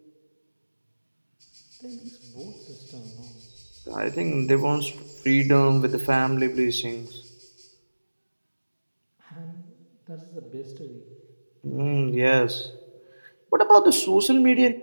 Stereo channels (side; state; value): both; inverted; correlation -1.00